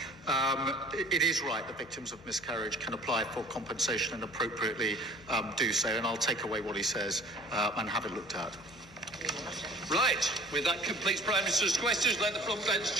It is right that victims of miscarriage can apply for compensation and appropriately do so, and I'll take away what he says and have it looked at. Right, with that completes Prime Minister's questions. Let the front bench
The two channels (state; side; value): noise; left; hum, 21 dB below the sound